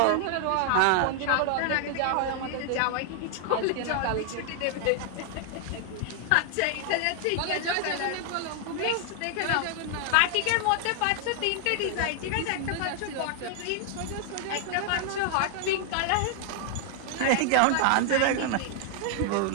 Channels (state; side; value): different; both; correlation 0.00